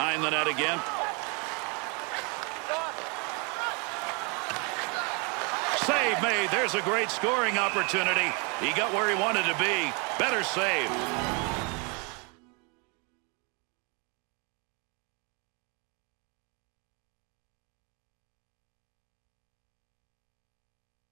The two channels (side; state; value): left; quieter; 32.7 dB